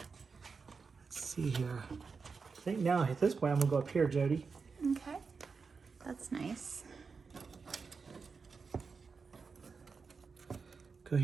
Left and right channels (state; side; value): quieter; left; 5.0 dB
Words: see here. I think now at this point I'm gonna go up here, Jody. Okay, that's nice. Go